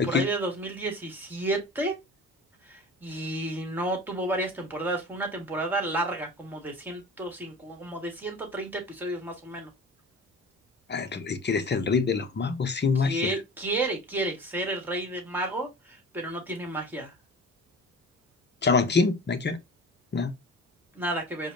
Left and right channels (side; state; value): both; normal; correlation 0.38